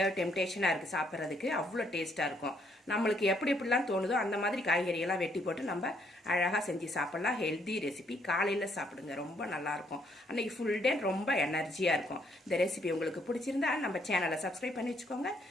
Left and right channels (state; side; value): normal; both; correlation 0.70